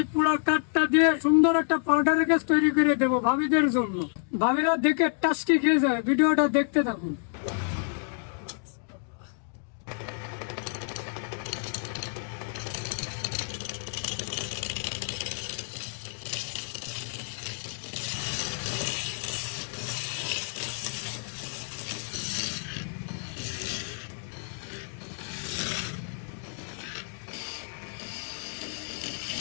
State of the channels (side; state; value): right; silent; 57 dB below the other